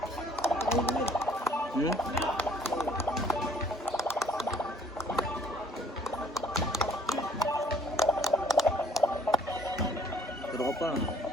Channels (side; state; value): both; normal; correlation 0.59